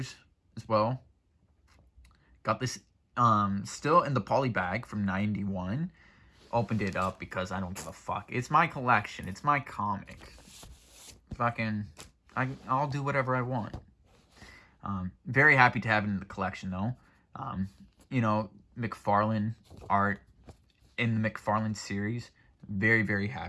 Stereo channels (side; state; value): both; identical; correlation 1.00